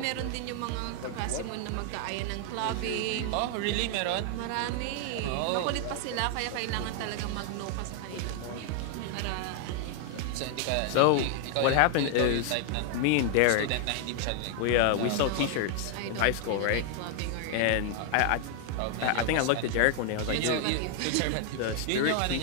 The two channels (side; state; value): both; different; correlation 0.00